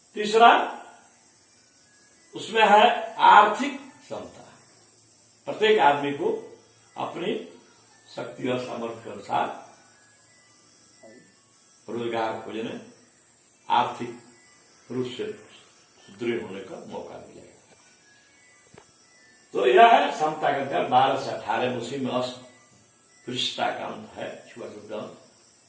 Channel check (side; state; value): both; identical; correlation 1.00